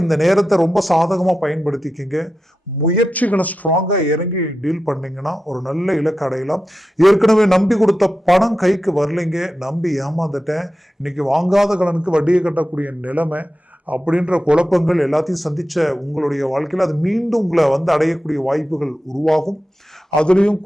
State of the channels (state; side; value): normal; both; correlation 0.91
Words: இந்த நேரத்தை ரொம்ப சாதகமா பயன்படுத்திக்கிங்க. முயற்சிகளை ஸ்ட்ராங்கா இறங்கி டீல் பண்ணீங்கன்னா ஒரு நல்ல இலக்கு அடையலாம். ஏற்கனவே நம்பி கொடுத்த பணம் கைக்கு வரலைங்க, நம்பி ஏமாந்துட்டேன், இன்னைக்கு வாங்காத கடனுக்கு வட்டியை கட்டக்கூடிய நிலைமை அப்படின்ற குழப்பங்கள் எல்லாத்தையும் சந்திச்ச உங்களுடைய வாழ்க்கையில் அது மீண்டும் உங்களை அடையக்கூடிய வாய்ப்புகள் உருவாகும். அதுலயும்